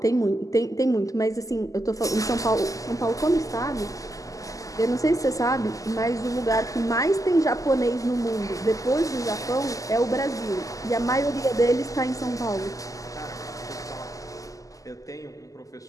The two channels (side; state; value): right; late; 0.17 ms